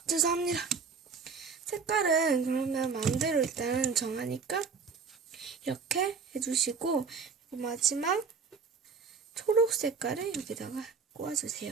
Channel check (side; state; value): left; quieter; 5.4 dB